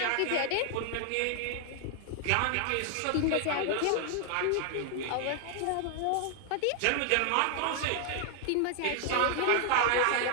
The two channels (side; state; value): both; different; correlation 0.00